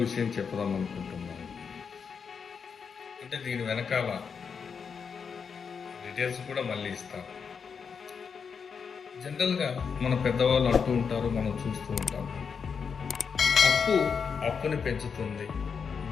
విషయం చెప్పుదాం అనుకుంటున్నాను. అంటే దీని వెనకాల డీటెయిల్స్ కూడా మళ్ళీ ఇస్తాను. జనరల్గా మన పెద్దవాళ్ళు అంటూ ఉంటారు, మనం చూస్తూ ఉంటాం, అప్పు అప్పుని పెంచుతుంది,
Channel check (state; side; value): quieter; right; 6.2 dB